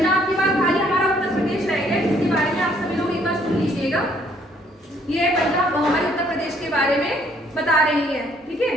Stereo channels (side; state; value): both; normal; correlation 0.65